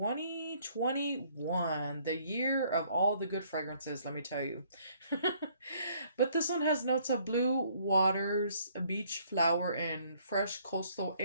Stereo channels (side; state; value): both; inverted; correlation -0.64